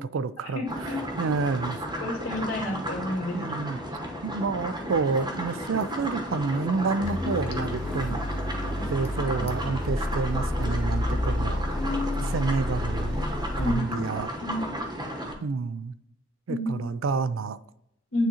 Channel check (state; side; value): normal; both; correlation 0.52